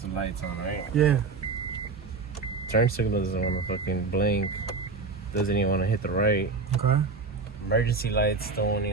the lights on, right? Yeah. Turn signal doesn't want to fucking blink. Doesn't even want to hit the right. Okay. Emergency lights don't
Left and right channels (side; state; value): left; quieter; 4.2 dB